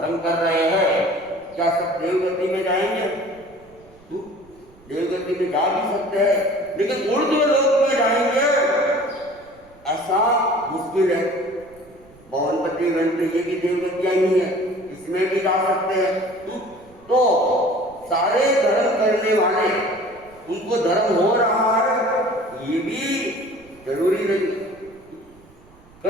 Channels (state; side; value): noise; right; rumble, 27 dB below the sound